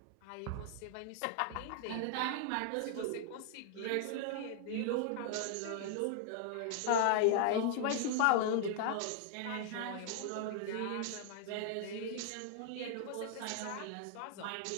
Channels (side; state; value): both; different; correlation 0.00